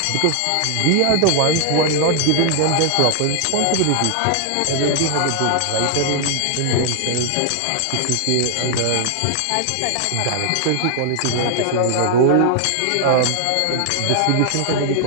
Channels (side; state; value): both; different; correlation 0.00